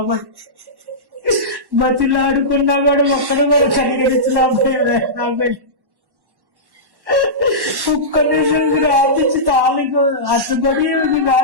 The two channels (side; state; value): left; late; 1.1 ms